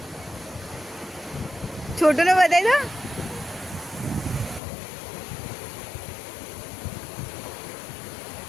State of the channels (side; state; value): right; drops out; at 4.6 s